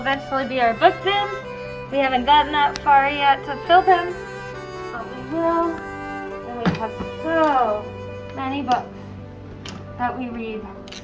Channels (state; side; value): identical; both; correlation 1.00